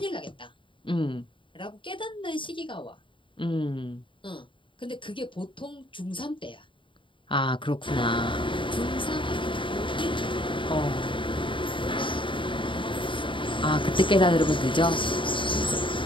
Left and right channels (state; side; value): late; right; 0.24 ms